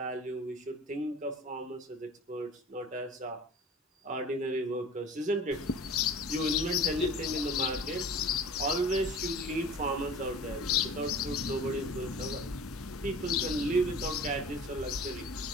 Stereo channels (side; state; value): both; normal; correlation 0.41